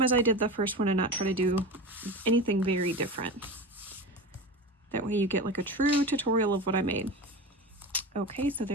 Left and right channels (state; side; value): normal; both; correlation 0.28